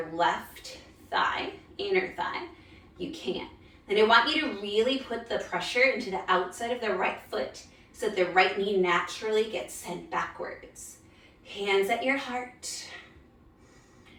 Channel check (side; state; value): both; identical; correlation 1.00